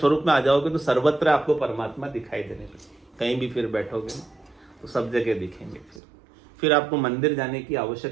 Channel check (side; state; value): left; drops out; at 6.0 s